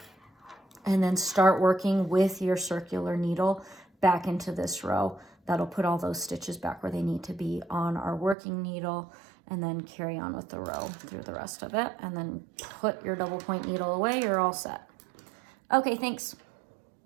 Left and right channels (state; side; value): drops out; left; at 8.3 s